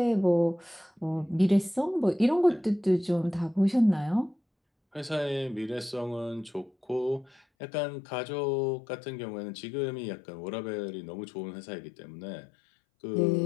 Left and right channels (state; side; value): drops out; right; at 7.4 s